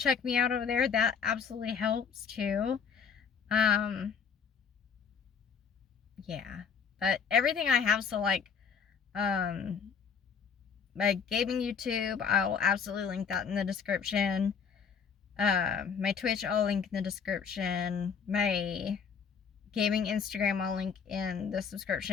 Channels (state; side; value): quieter; right; 6.5 dB